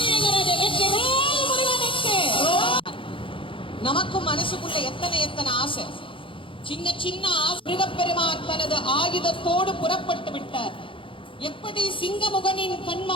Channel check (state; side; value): late; right; 0.25 ms